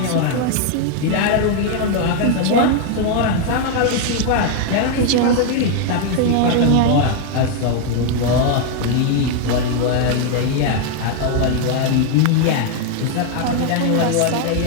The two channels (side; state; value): both; different; correlation 0.00